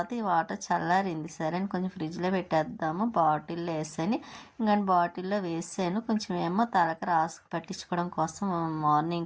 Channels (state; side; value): identical; both; correlation 1.00